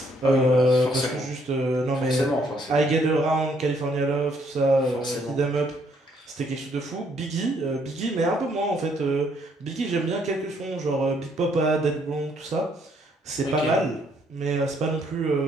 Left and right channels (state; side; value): normal; both; correlation 0.68